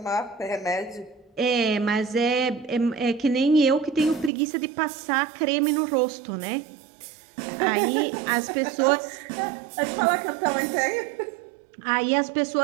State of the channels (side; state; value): left; drops out; at 4.3 s